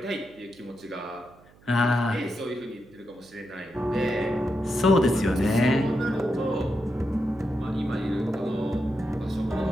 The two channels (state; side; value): noise; right; hum, 27 dB below the sound